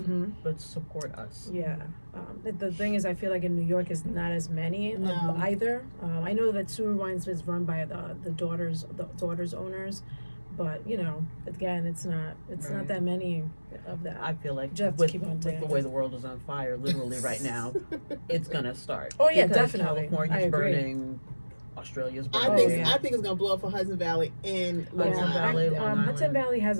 let's support us. Yeah. The thing is, I feel like in New York is not as many of No. either. I know that Suru Wines is run by the daughters owners, but again, it's not Right. that many of that. I feel like Just have to with, keep on with doing the it. way the world is on fire, literally right now, it's gonna start. Oh, yeah, Because definitely. California's I agree. burning, Australia's I burning. think yeah. I think it's gonna blow up for Hudson Valley and Long Hudson Island. Valley, Long Hudson Island. Valley has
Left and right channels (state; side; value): inverted; both; correlation -1.00